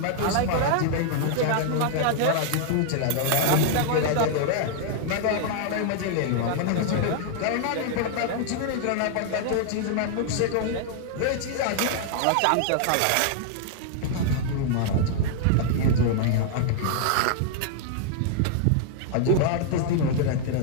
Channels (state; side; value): different; both; correlation -0.01